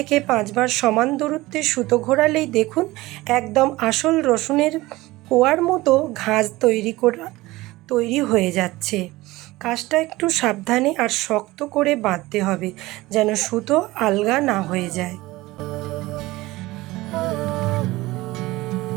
5 বার সমান দূরত্বে সুতো ঘোরালেই দেখুন একদম আসল রসুনের কোয়ার মতো ঘাঁজ তৈরি হয়ে যাচ্ছে। কাজটা একটু সাবধানে আর শক্ত করে বাঁধতে হবে, যেন সুতো আলগা না হয়ে যায়।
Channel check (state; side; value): quieter; left; 19.3 dB